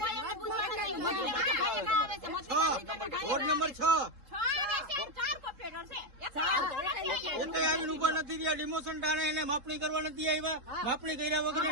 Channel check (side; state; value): left; late; 3.7 ms